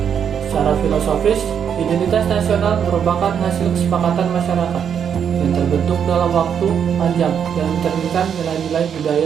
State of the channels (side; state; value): left; quieter; 7.9 dB